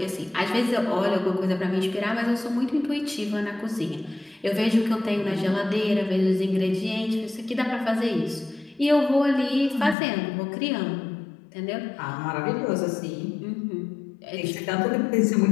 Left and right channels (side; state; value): right; drops out; at 10.0 s